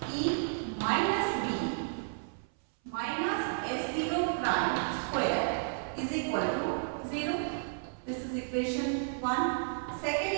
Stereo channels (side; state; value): left; silent; 56 dB below the other